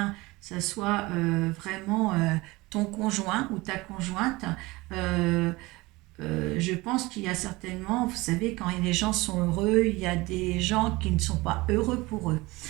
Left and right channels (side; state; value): left; quieter; 21.8 dB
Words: ça soit vraiment ton conjoint ou ta conjointe. Je pense qu'il y a certainement, vous savez, quand les gens sont heureux, il y a des gens qui ne sont pas heureux pour eux.